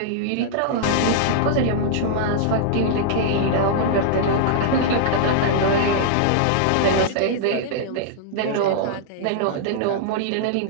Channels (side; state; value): both; different; correlation -0.01